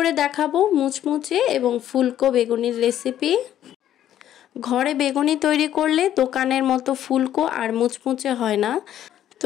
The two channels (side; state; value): right; quieter; 11.4 dB